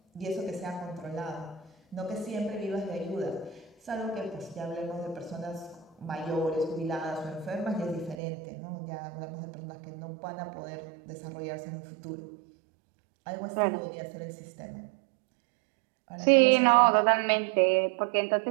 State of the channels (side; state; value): left; drops out; at 8.2 s